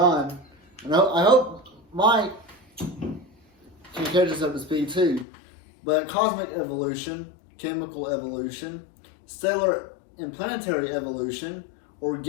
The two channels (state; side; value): drops out; right; at 5.2 s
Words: And I hope Mike can catch us up to speed too. But cosmic evolution, chemical evolution, stellar and planetary evolution,